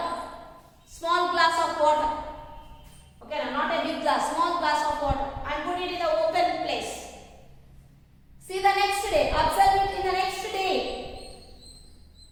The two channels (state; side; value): identical; both; correlation 1.00